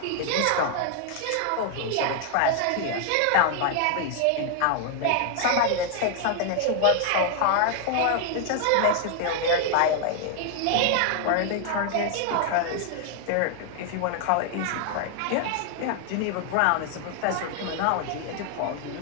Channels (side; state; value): both; different; correlation 0.00